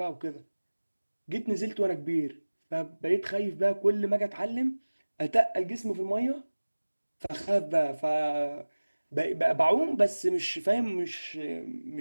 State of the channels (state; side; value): inverted; both; correlation -1.00